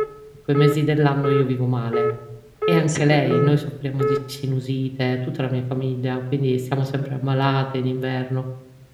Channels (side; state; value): both; identical; correlation 1.00